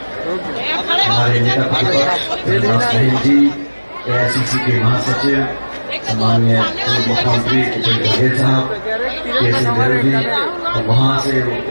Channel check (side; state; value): both; inverted; correlation -1.00